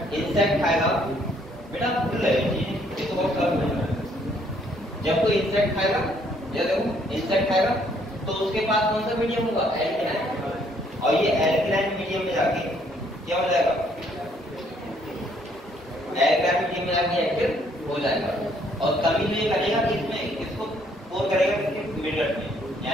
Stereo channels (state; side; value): normal; both; correlation 0.66